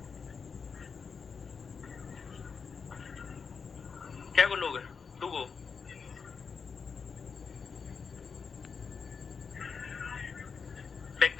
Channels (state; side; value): quieter; right; 5.6 dB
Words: क्या गो लोग है? 2 गो। बैग